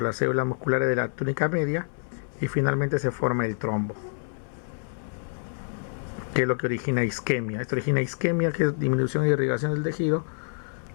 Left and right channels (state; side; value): silent; right; 60 dB below the other